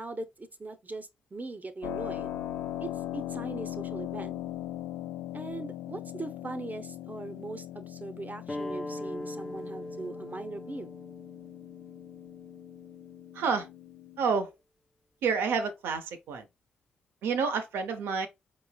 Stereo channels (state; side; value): normal; both; correlation 0.54